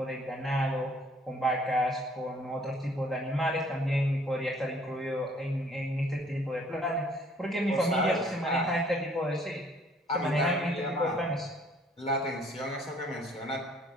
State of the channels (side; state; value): both; normal; correlation 0.59